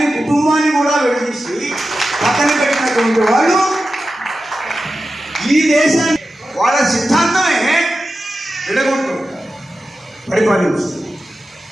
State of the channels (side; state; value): both; normal; correlation 0.92